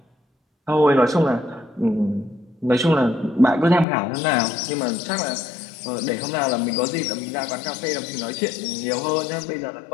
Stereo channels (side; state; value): right; drops out; at 3.9 s